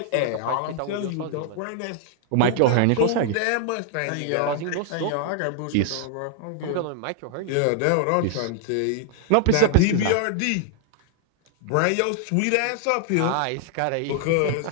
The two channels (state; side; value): different; both; correlation 0.00